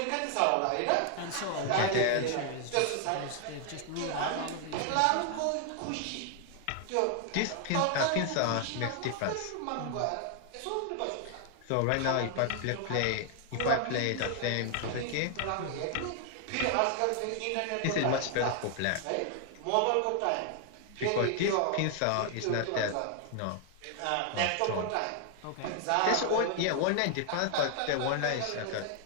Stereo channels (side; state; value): both; different; correlation 0.00